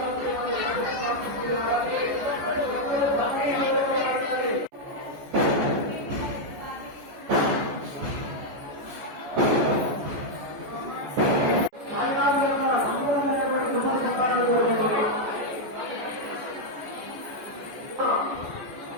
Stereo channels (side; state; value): left; late; 14 ms